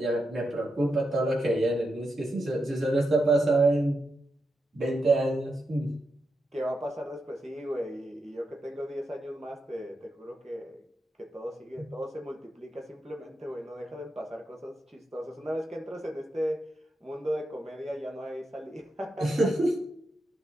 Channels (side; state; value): both; normal; correlation 0.86